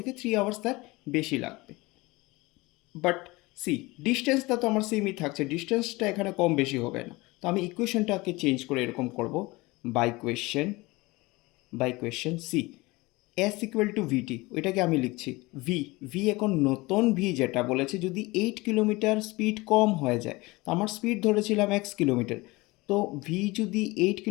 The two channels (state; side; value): quieter; right; 22.4 dB